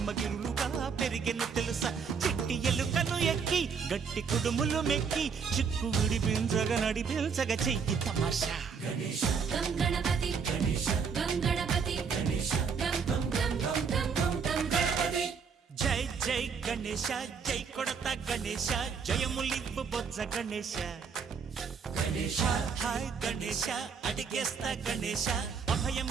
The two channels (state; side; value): quieter; left; 6.0 dB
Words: పెరిగెను తెలుసా చిట్టి ఎలుకను ఎక్కి గట్టి కుడుములు మెక్కి చిక్కు విడిపించగ నడిపించగ చెయ్యి తమాషా గణేశ గం గణపతి గణేశ గం గణపతి గణేశ గం గం గం గం గం గం గం గణపతి జై జై గణేశ జై కొడత గణేశ జయములివ్వు బొజ్జ గణేశ గణేశ హాయ్ గణేశ అడిగేస్తా గణేశ